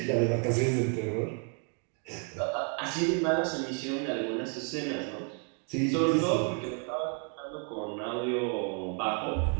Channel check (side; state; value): left; quieter; 38.4 dB